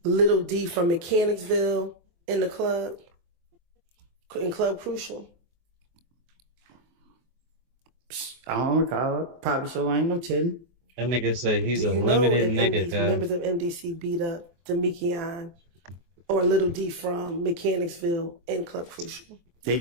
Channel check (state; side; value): late; left; 23 ms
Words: Little D from Mechanicsville in the club, in Club Crucial? I don't recall. Probably so. I ain't no telling. That nigga say he's Do a you know limited if nigga, guy. members of MDC beat up Demekion or Little D from Mechanicsville in Club Crucial? They